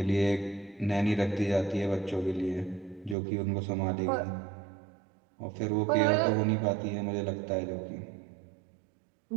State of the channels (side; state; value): left; drops out; at 3.2 s